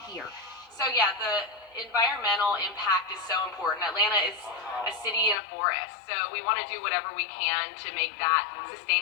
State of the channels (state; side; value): drops out; right; at 5.4 s